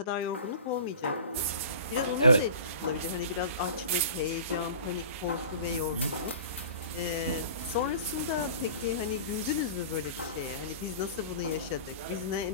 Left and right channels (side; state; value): both; inverted; correlation -0.40